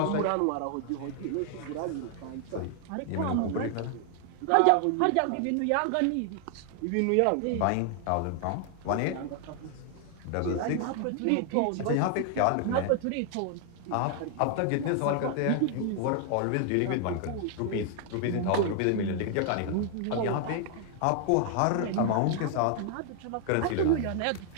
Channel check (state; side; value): different; both; correlation 0.00